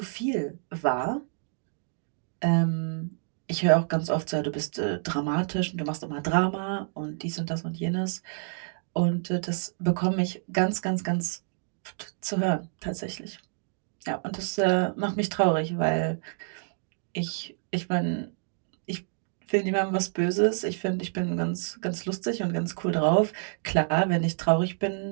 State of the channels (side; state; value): left; silent; digital silence